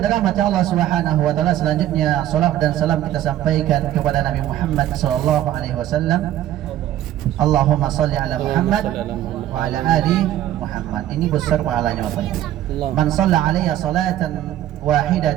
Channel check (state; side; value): quieter; left; 12.7 dB